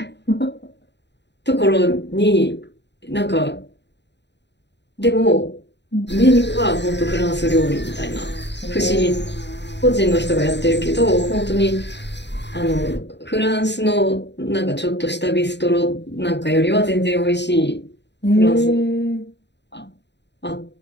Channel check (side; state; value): right; late; 0.51 ms